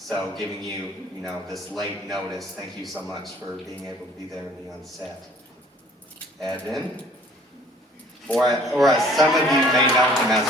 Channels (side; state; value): both; normal; correlation 0.54